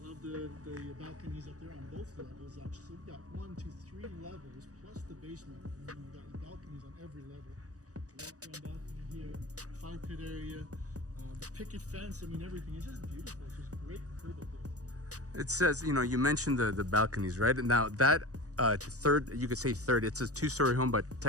Love the balconies up there on both levels. Actually, so we've got 1, 2, 3 levels plus the basement, and then we've got the balconies on every level. Walk around balcony here, fire pit area. The picket fence, I mean, everything is just beautiful. It's just great curb appeal. It says, you know, you mentioned the balconies, right? And now that third, you could say third, it's a 2-story home, but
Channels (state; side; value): late; left; 0.66 ms